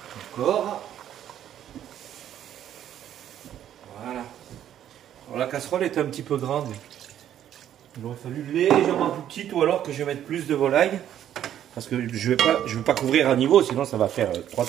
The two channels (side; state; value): left; quieter; 10.7 dB